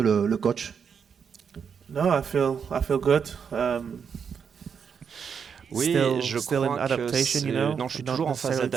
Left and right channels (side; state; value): left; quieter; 6.8 dB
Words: coach? No, I feel good. Oui, je crois que non, je suis toujours en phase